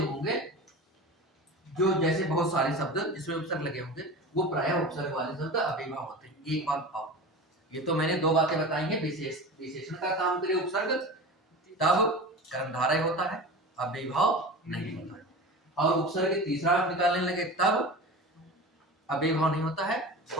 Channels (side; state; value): both; normal; correlation 0.32